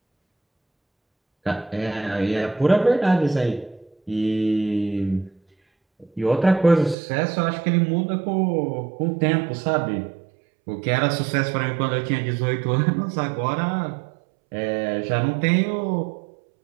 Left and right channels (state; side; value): drops out; left; at 7.0 s